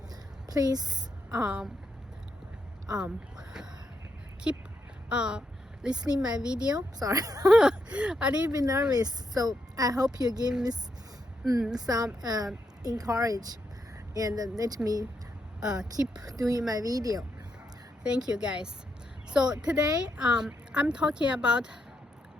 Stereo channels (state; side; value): normal; both; correlation 0.80